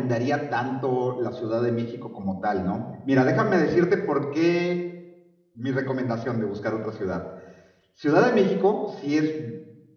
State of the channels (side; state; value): both; identical; correlation 1.00